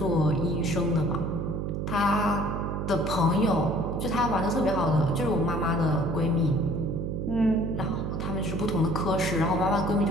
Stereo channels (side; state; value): right; noise; hum, 3 dB below the sound